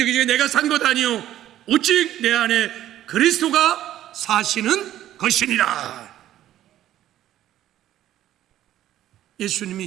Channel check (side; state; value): left; quieter; 12.7 dB